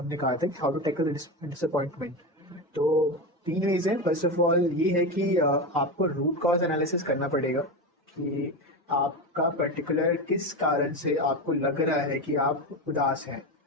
कहा था कि हाउ टू टैकल डिसअपॉइंटमेंट। तो 3 वेज हैं। फर्स्ट ऑफ ऑल ये है कि आपको रूट कॉज एनालिसिस करना पड़ेगा। कि आपका पर्टिकुलर किस कारण से आपको लग रहा है कि आप उदास हैं,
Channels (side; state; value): both; normal; correlation 0.18